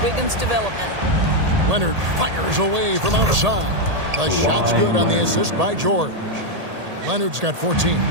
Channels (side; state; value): left; late; 1.8 ms